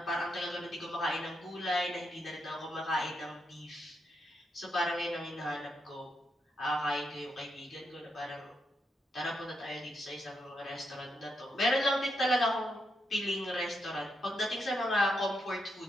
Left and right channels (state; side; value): normal; both; correlation 0.82